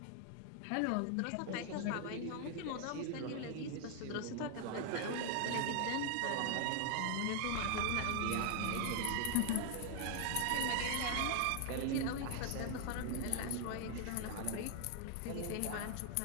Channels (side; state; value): both; different; correlation 0.00